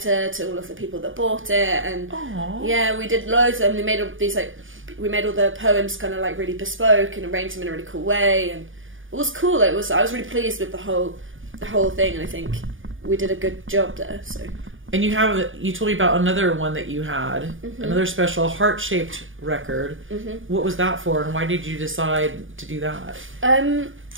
to all of the people that bought it. And yeah, we did loads of them. We made all these we made all the poems kind of like really bespoke and arranged them in a really cool way, and it was cool. I was really pleased with the whole thing, and I think we did a good job there. So. And you told me about another one that you had, another special heart-shaped record. What was that for, and why did you decide to do that?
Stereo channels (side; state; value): left; late; 0.58 ms